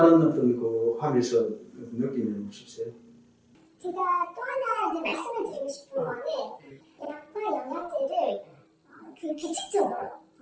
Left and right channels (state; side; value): identical; both; correlation 1.00